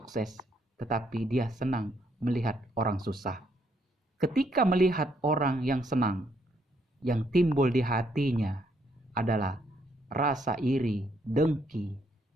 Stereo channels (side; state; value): both; normal; correlation 0.72